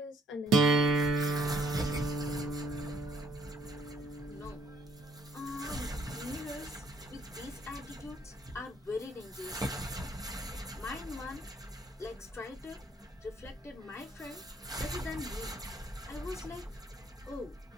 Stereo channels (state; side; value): normal; both; correlation 0.66